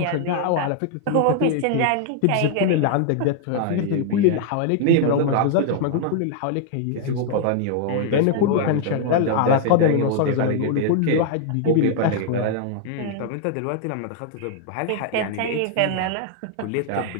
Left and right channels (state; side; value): different; both; correlation 0.00